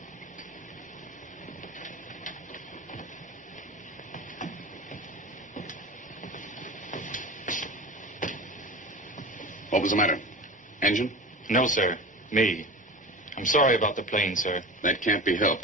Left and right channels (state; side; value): normal; both; correlation 0.31